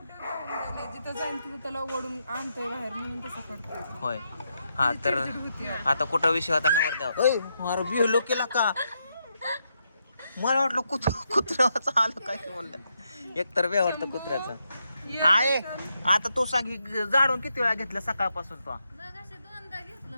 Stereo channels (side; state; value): both; inverted; correlation -0.82